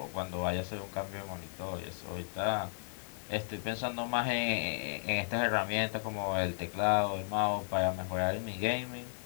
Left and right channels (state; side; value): silent; right; 55 dB below the other